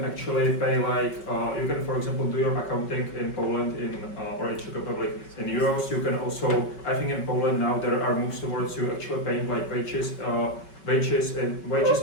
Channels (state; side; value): late; right; 5.3 ms